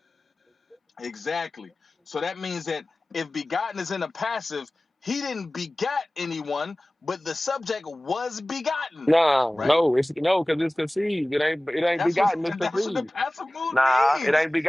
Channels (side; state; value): both; normal; correlation 0.98